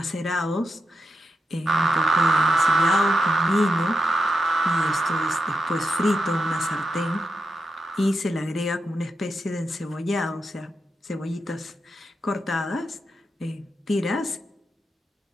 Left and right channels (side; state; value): both; normal; correlation 0.85